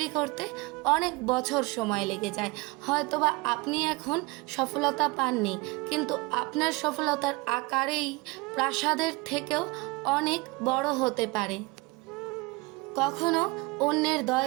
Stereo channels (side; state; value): left; quieter; 24.8 dB